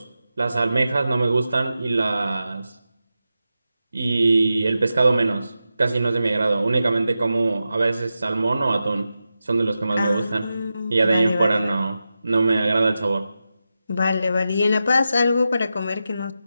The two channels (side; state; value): both; inverted; correlation -0.91